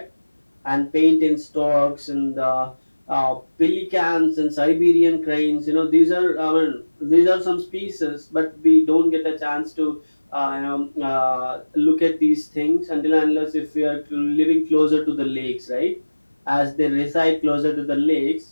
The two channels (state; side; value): inverted; both; correlation -1.00